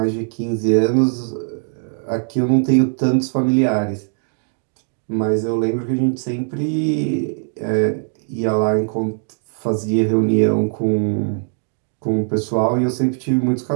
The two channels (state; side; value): silent; left; digital silence